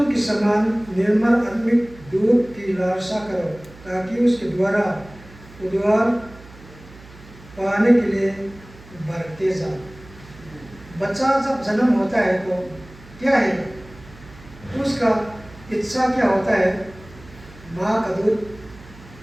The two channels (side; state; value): right; noise; hum, 21 dB below the sound